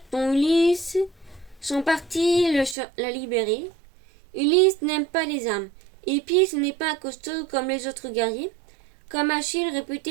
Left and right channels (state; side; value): drops out; left; at 2.8 s